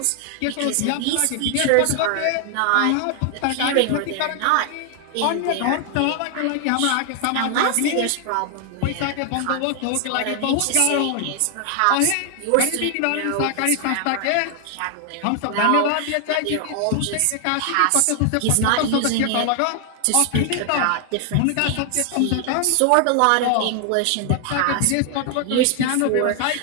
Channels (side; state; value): both; different; correlation 0.00